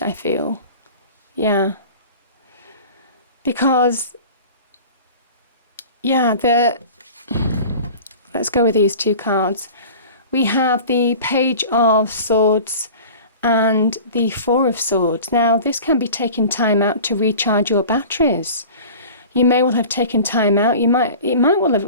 I feel. Yeah. Because, yeah, let's go with these two cards. We have the Page of Swords and the Four of Swords. Now, this can be taking time out to recharge your batteries. You may well have taken time out. It might well have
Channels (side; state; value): both; inverted; correlation -0.40